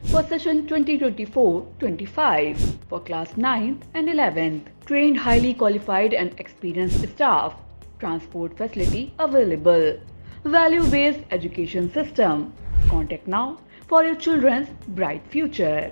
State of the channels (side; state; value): both; inverted; correlation -1.00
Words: for session 2024-25 for class 9th and 11th. Trained, highly qualified and experienced staff. Transport facility available. Value-based education system. Contact now for your children's bright future.